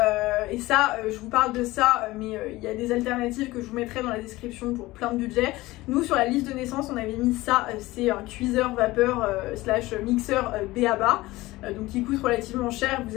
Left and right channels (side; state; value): right; quieter; 19.1 dB